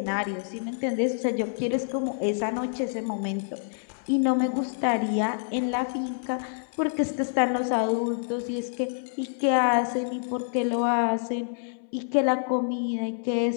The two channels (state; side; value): silent; right; 60 dB below the other